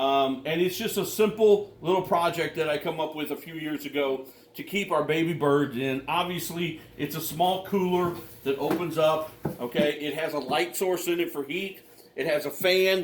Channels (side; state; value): both; identical; correlation 1.00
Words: it's just a simple little project that I come up with a few years ago to keep our baby birds in. Obviously, it's a small cooler that opens up, okay? It has a light source in it for heat. It has a